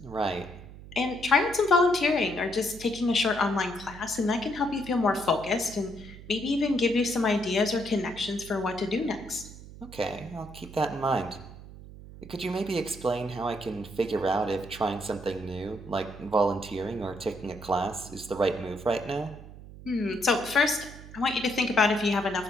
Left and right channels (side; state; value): right; noise; hum, 16 dB below the sound